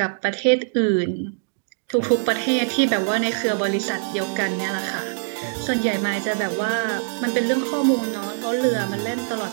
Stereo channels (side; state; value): left; silent; digital silence